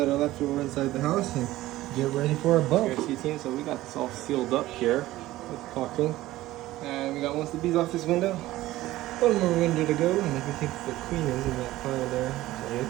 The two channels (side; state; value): left; quieter; 16.4 dB